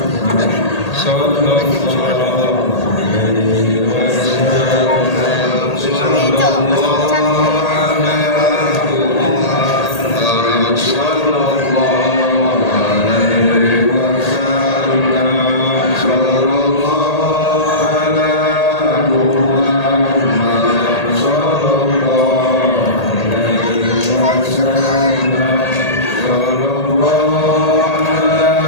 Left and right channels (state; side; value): late; right; 1.8 ms